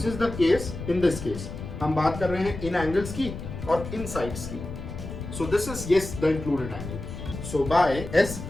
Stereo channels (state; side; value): noise; left; rumble, 9 dB below the sound